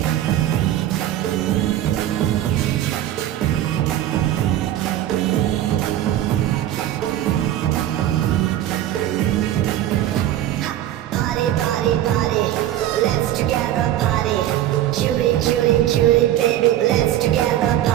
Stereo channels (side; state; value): left; quieter; 12.7 dB